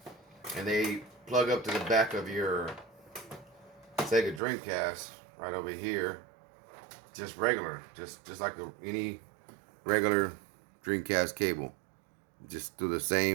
And they plug up to the back of your Sega Dreamcast right over here, just regular, just like any regular Dreamcast cable. Just through the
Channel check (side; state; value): left; drops out; at 4.4 s